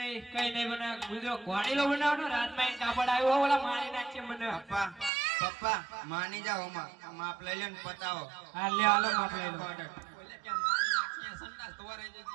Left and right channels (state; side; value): drops out; left; at 5.1 s